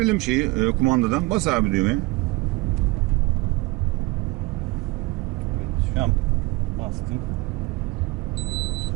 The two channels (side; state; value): left; quieter; 23.3 dB